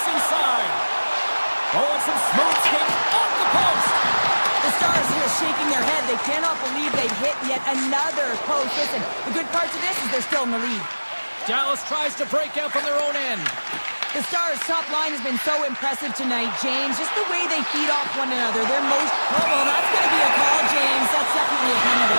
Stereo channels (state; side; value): inverted; both; correlation -1.00